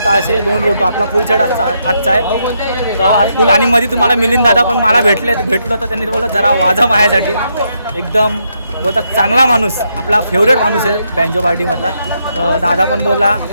ताशे 2 रोटो आपला फुल सेट आजचा आहे. तर आज फुल. आणि मध्ये तुम्हाला मिलिंद दादा पण मला भेटलो तर त्यांनी बोललं जरा वाजा माझ्यासाठी. एकदम बोलतात चांगला माणूस, आपला फेवरेट माणूस आहे बँजो पार्टीमधला. तर दादा पण बोलला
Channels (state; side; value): inverted; both; correlation -0.78